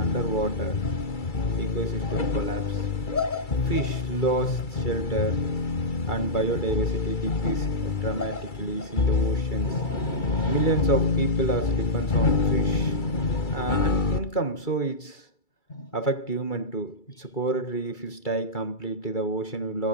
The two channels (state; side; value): late; right; 2.3 ms